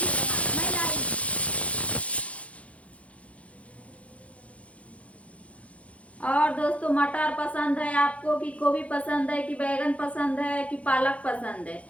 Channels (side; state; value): right; late; 0.064 ms